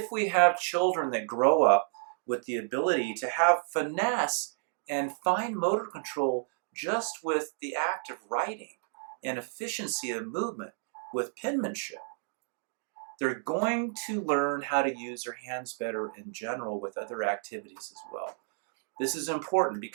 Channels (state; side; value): silent; left; 57 dB below the other